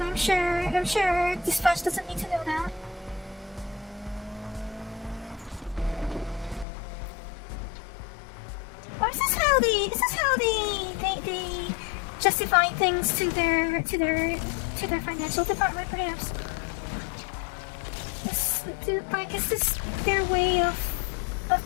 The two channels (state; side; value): drops out; right; at 6.7 s